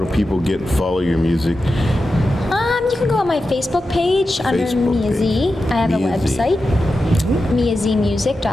people follow your music? You can go on my Facebook page under Facebook Niazi. page. I have a Niazi. website,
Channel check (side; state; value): both; normal; correlation 0.91